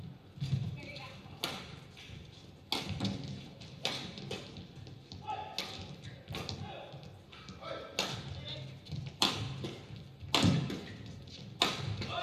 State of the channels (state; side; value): identical; both; correlation 1.00